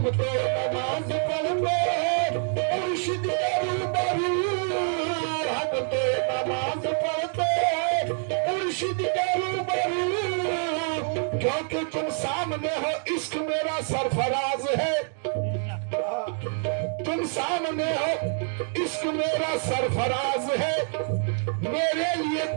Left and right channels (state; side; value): silent; left; 61 dB below the other